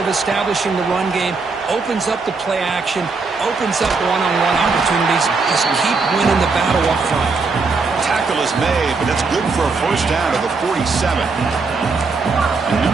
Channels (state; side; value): quieter; left; 4.3 dB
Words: establishing the run game. Opens up the play action, opens up one-on-one opportunities. Just keep winning the battle up front. Tackle is made, but that's good for a 1st down to the 47. A